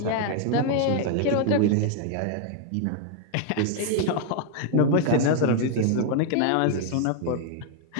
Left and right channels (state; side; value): different; both; correlation 0.00